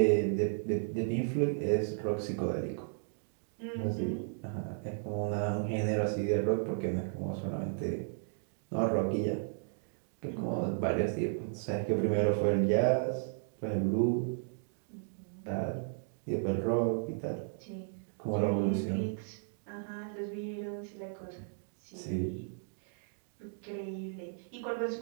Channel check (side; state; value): left; silent; digital silence